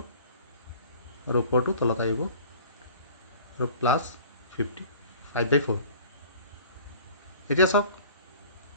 আৰু ওপৰটো তলত আহিব আৰু প্লাছ 5/4 এতিয়া চাওক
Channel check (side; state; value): both; inverted; correlation -0.46